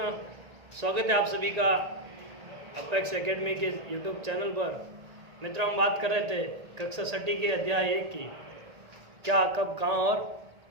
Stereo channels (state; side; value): late; left; 1.9 ms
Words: स्वागत है आप सभी का अपेक्स एकेडमी के यूट्यूब चैनल पर। मित्रों, हम बात कर रहे थे कक्षा छठी के अध्याय 1 की, क्या कब कहाँ और